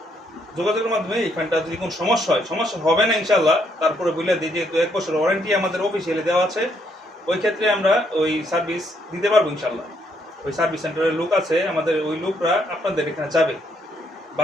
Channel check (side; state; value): both; normal; correlation 0.72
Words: যোগাযোগের মাধ্যমে এই ফ্যানটা যদি কোনো সমস্যা হবে না ইনশাল্লাহ, তারপরে বলে দিই যেহেতু 1 বছর ওয়ারেন্টি আমাদের অফিসিয়ালি দেওয়া আছে, ওই ক্ষেত্রে আমরা ওই সার্ভিস দিতে পারবো ইনশাল্লাহ। ওই সার্ভিস সেন্টারের লোক আছে আমাদের, ওই লোকরা আপনাদের এখানে যাবে, বা